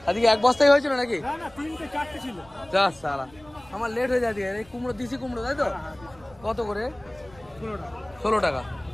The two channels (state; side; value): noise; right; rumble, 25 dB below the sound